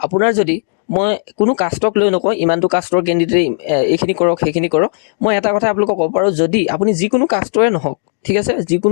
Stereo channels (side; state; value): right; silent; 68 dB below the other